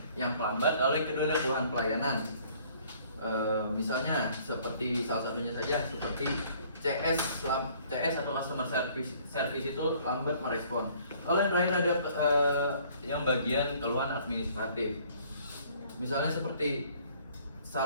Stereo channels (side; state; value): both; inverted; correlation -0.58